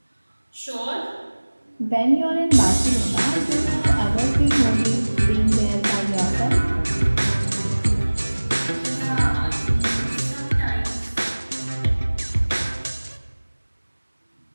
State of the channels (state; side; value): inverted; both; correlation -1.00